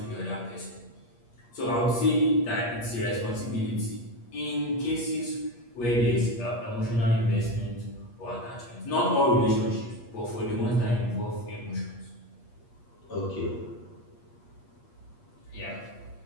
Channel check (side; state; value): right; late; 8.4 ms